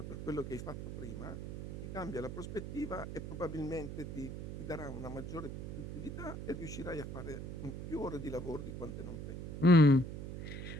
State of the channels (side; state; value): right; noise; hum, 7 dB below the sound